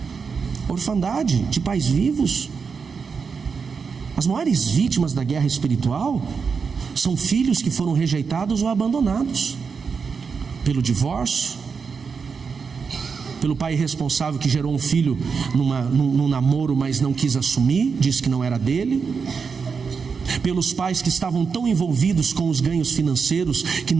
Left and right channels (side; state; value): left; quieter; 5.5 dB